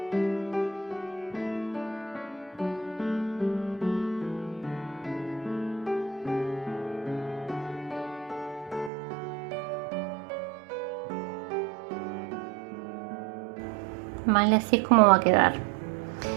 Vale, así es como va a quedar.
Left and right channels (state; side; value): drops out; left; at 8.9 s